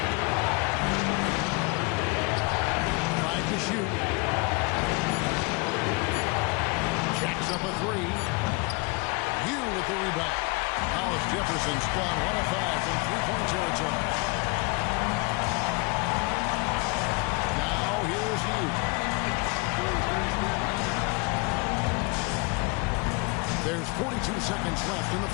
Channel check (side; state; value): right; quieter; 28.4 dB